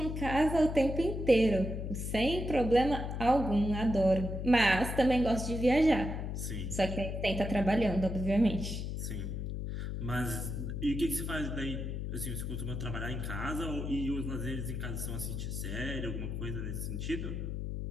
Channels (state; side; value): noise; left; hum, 4 dB below the sound